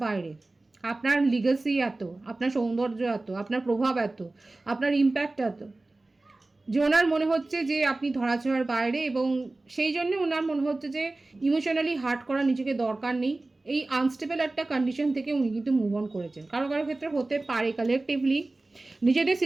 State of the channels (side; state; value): left; quieter; 3.0 dB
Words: বাইরে, আপনার লিগাসি এত, আপনার সৌন্দর্য এত, আপনার প্রভাব এত, আপনার ইম্প্যাক্ট এত, যে ওনার মনে হচ্ছে যে আপনি ধরাছোঁয়ার বাইরে, এবং সেই জন্য ওনার মনে হচ্ছে যে ইমোশনালি হার্ট করা নিজেকে দরকার নেই, এই আনস্টেবল একটা কন্ডিশন থেকে উনি কিন্তু মুভ অন করেছেন। কারো কারো ক্ষেত্রে হতে পারে কালেকটিভলি। নিজেদের